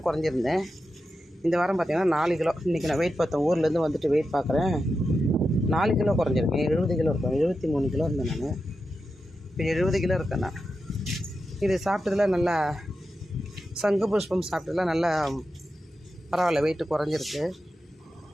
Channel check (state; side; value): normal; both; correlation 0.90